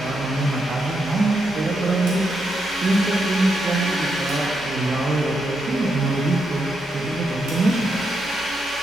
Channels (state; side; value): normal; both; correlation 0.82